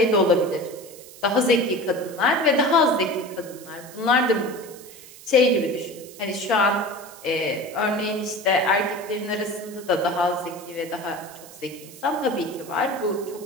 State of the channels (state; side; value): noise; right; hiss, 19 dB below the sound